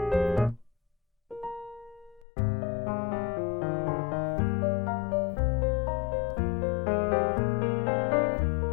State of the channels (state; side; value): drops out; right; at 2.2 s